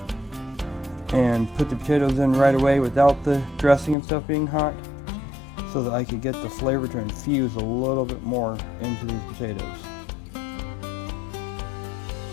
and put the potatoes in right away without the dressing and stuff being hot, so that I could get the flavor to infuse a little bit more into these potatoes.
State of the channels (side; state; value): right; drops out; at 4.0 s